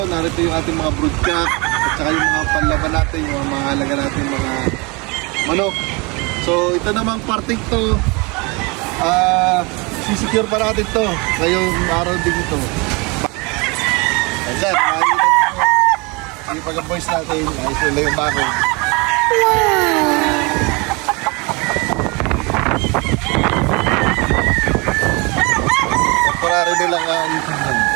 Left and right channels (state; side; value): quieter; left; 28.0 dB